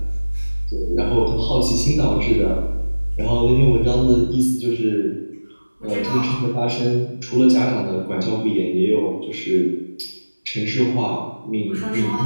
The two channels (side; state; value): both; inverted; correlation -1.00